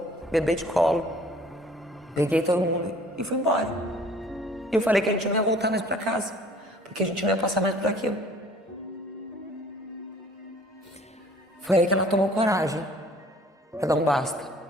bebê de colo. Peguei todo mundo e fui embora. E eu falei que a gente não ia voltar mais para casa, porque a gente não ia passar mais por aquilo. Foi aí que ela tomou coragem pra dar um basta.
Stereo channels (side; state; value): both; normal; correlation 0.53